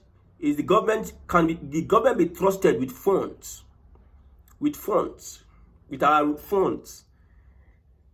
Is the government, can the government be trusted with funds? With our funds?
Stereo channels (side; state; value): both; identical; correlation 1.00